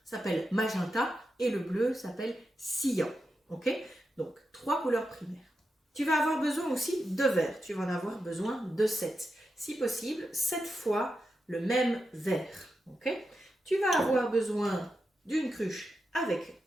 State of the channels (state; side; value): normal; both; correlation 0.88